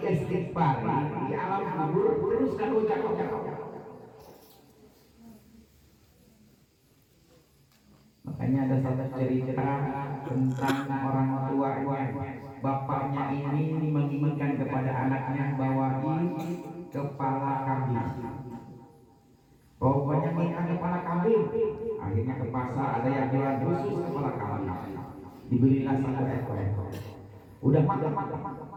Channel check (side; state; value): both; identical; correlation 1.00